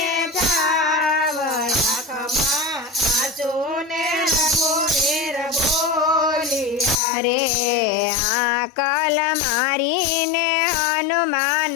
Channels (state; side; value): drops out; right; at 7.0 s